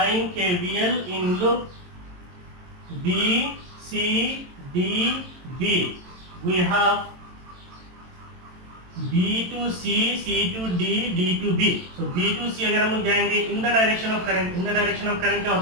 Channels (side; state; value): left; late; 22 ms